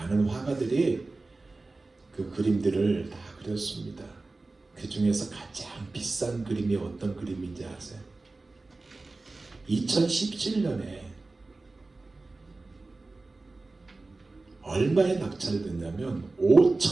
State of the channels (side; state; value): left; quieter; 3.4 dB